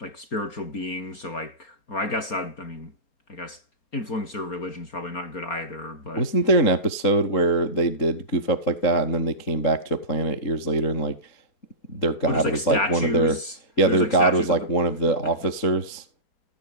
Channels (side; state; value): right; late; 4.3 ms